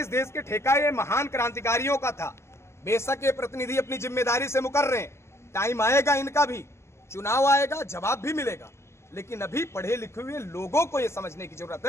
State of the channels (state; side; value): late; right; 0.13 ms